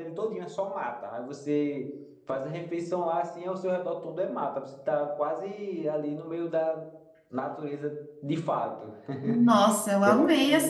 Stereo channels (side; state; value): both; identical; correlation 1.00